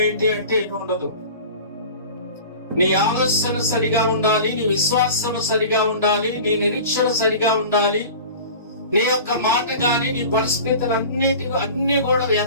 ఏంటి అంటే ఏమి ఉండదు. నీ ఆలోచన సరిగా ఉండాలి, నీ విశ్వాసం సరిగా ఉండాలి, నీ నిరీక్షణ సరిగా ఉండాలి. నీ యొక్క మాట గాని, నీ పరిస్థితులు అన్ని కూడా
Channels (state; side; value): inverted; both; correlation -0.38